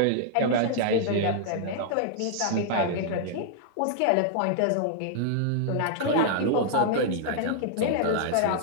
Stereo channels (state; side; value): different; both; correlation -0.01